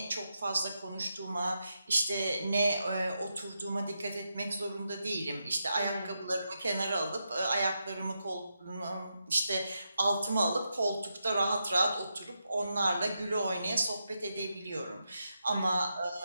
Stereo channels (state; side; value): inverted; both; correlation -0.85